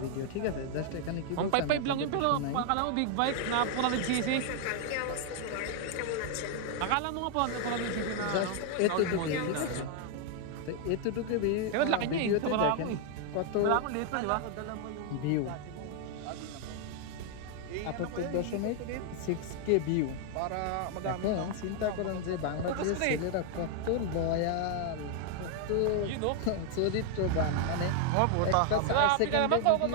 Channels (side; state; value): both; different; correlation 0.00